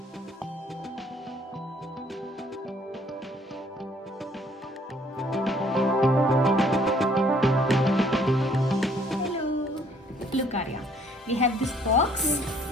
Look Arya, we have this box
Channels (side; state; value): both; normal; correlation 0.61